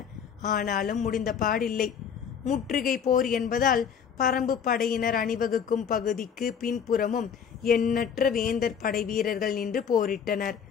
ஆனாலும் முடிந்த பாடில்லை. முற்றுகை போர் என்பதால் பரம்பு படையினர் அணிவகுக்கும் பகுதிக்கு பின்புறமும் எண்ணற்ற வேந்தர் படை வீரர்கள் நின்று போரிட்டனர்.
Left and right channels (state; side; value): quieter; right; 7.4 dB